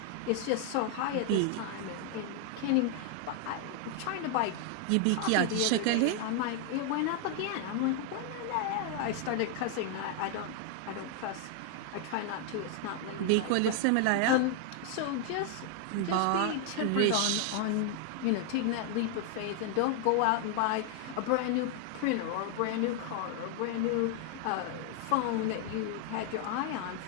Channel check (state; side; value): different; both; correlation 0.00